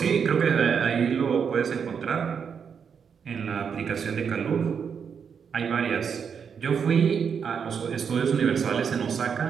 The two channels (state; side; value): quieter; left; 6.8 dB